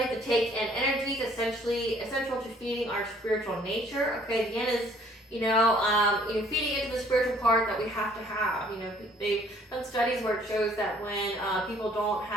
to take in energies, essential to feeding our spiritual nature. Okay, the yin is feeding into the spiritual part that we have to have. They've done studies where it shows that when people don't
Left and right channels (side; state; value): both; normal; correlation 0.59